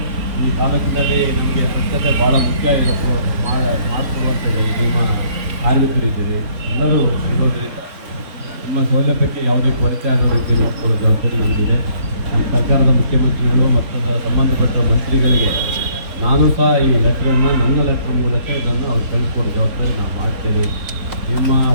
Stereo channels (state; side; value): late; left; 4.0 ms